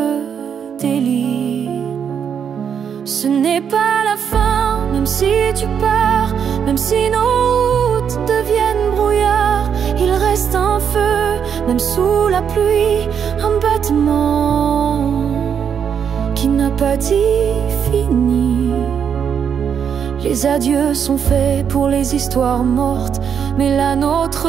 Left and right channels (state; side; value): quieter; left; 7.6 dB